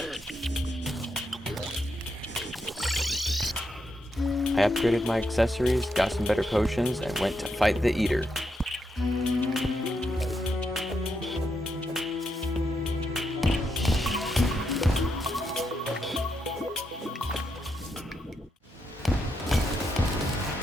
I upgraded my accessories, got some better potions, and went to fight the Eater.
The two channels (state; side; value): normal; both; correlation 0.82